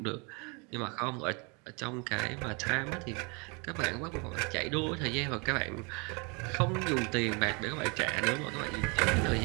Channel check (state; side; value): quieter; left; 31.2 dB